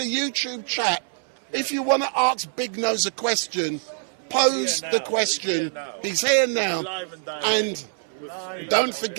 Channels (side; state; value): left; silent; 59 dB below the other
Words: chat, if you want to ask Big Nose a question, pose the question. He's here now. And don't